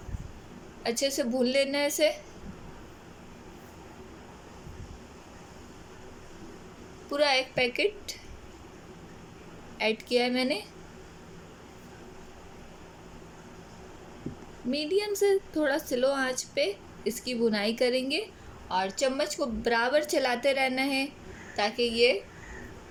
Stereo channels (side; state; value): both; identical; correlation 1.00